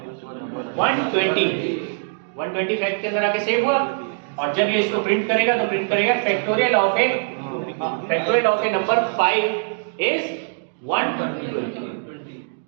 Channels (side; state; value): left; silent; digital silence